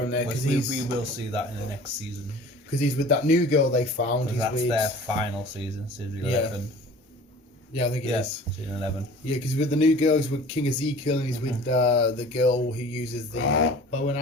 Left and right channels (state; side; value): normal; both; correlation 0.44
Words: there because we will see that in the next season. Because he's with that new girl they found. That's their final season, season 11. Yeah, I think it is. Season 11. Yeah, because with the new girl, he's with King Ezekiel, and he's with the girl who uses the bow and